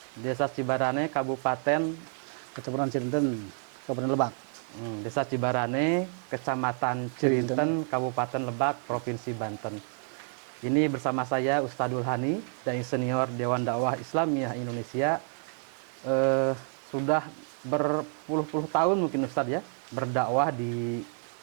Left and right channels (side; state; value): left; silent; 56 dB below the other